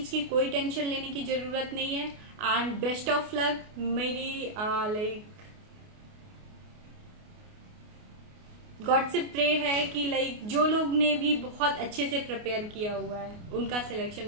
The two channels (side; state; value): left; late; 28 ms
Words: की कोई टेंशन लेने की ज़रूरत नहीं है एंड बेस्ट ऑफ लक। मेरी लाइक गॉड से प्रे है कि लाइक जो लोग ने भी बहुत अच्छे से प्रिपेयर किया हुआ है उनका